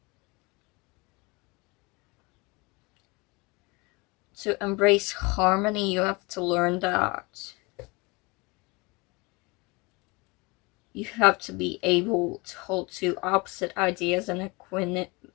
To embrace harmony, you have to learn that you have to be able to hold two opposite ideas in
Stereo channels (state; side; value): quieter; right; 26.5 dB